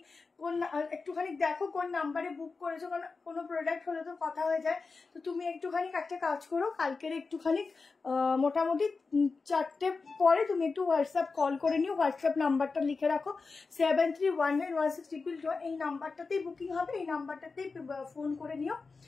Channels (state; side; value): quieter; right; 4.3 dB